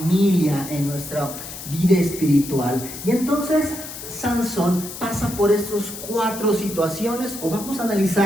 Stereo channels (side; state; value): left; noise; hiss, 11 dB below the sound